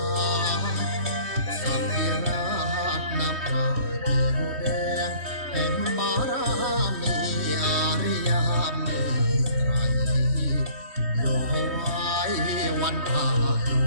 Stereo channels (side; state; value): left; late; 3.2 ms